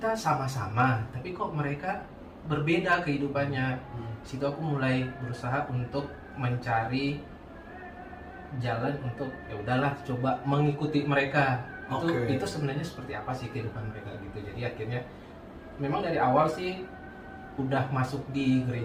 sama-sama, tapi kok mereka berbeda kehidupannya. Situ aku mulai berusaha untuk mencari jalan untuk ya udahlah coba mengikuti mereka. Itu sebenarnya seperti apa sih kehidupan mereka gitu. Jadi akhirnya memang dari awal sih udah masuk di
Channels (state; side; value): identical; both; correlation 1.00